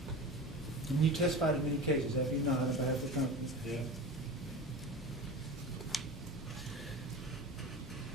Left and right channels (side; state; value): both; normal; correlation 0.30